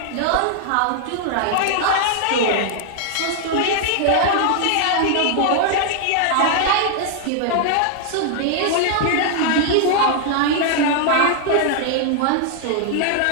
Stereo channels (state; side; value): different; both; correlation 0.00